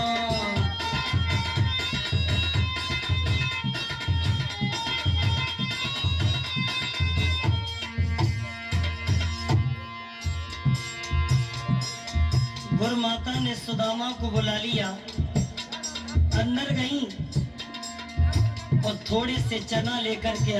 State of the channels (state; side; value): identical; both; correlation 1.00